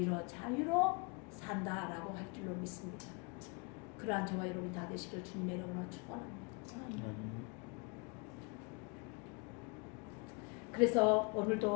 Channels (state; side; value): quieter; right; 31.5 dB